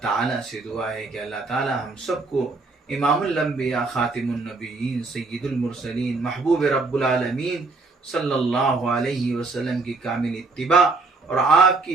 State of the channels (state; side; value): quieter; left; 3.7 dB